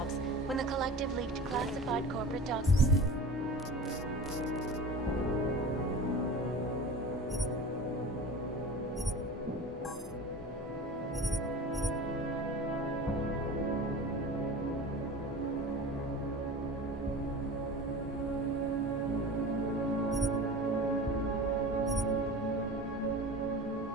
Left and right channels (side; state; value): both; normal; correlation 0.35